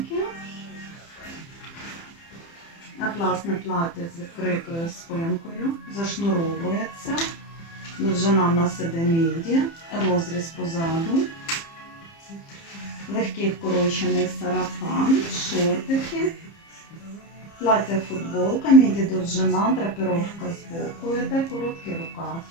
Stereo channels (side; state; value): right; late; 30 ms